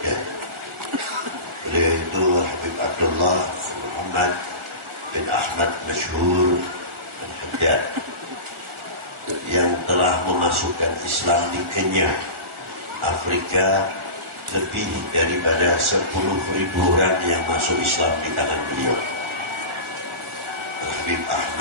Beliau itu Al-Habib Abdullah Muhammad bin Ahmad Masyhur Al-Haddad yang telah memasukkan Islam di Kenya, Afrika, lebih daripada 10.000 orang yang masuk Islam di tangan beliau. Al-Habib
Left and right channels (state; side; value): late; left; 1.4 ms